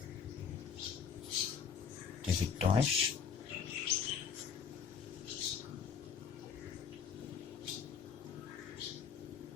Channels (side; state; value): right; quieter; 6.8 dB